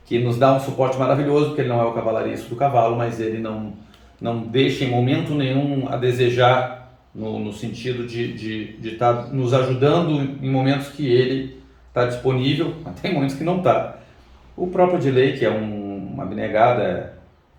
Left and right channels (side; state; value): both; identical; correlation 1.00